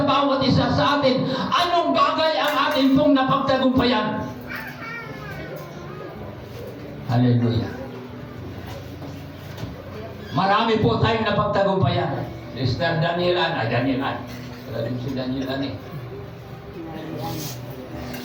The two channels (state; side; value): identical; both; correlation 1.00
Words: bawat isa sa atin. Anong bagay napagtagumpayan. Hallelujah. Marami po tayong napagtagumpayan. Sister Danielan. Wala din si Danielan eh.